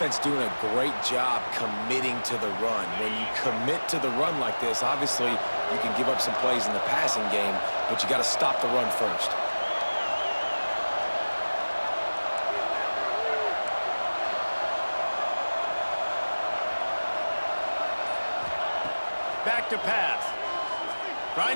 doing a great job committing to the run. When you commit to the run like this, obviously you can give up some plays in the passing game, but you got to stop the run first. Back to pass. Trying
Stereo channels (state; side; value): inverted; both; correlation -1.00